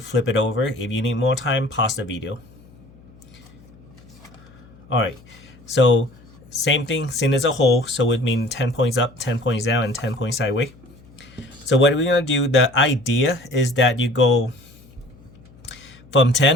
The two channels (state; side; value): noise; left; hum, 25 dB below the sound